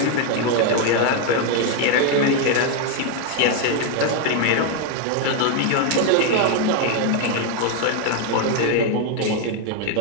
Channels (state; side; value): different; both; correlation 0.01